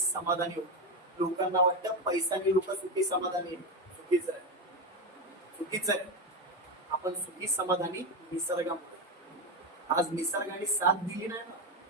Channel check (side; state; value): both; normal; correlation 0.12